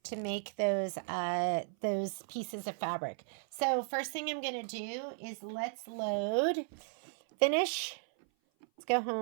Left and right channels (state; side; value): silent; left; 54 dB below the other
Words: to make those pieces of fabric. So first thing I'm going to do is let's load, finish, let's go